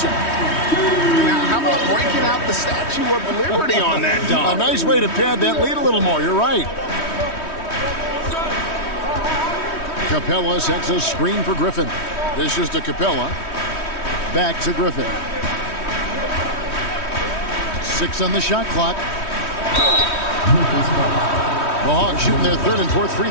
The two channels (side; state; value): right; late; 3.1 ms